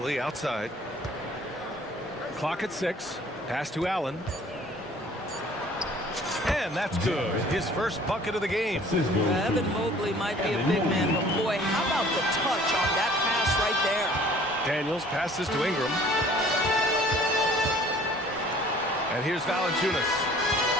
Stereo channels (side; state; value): both; normal; correlation 0.52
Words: outside. Clock at 6. Pass to Allen. And that's good. His first bucket of the game. Evan Mobley might be a big man, but boy, how about the touch on that pass right there? Daniels passes to Ingram. And here's Valanciunas.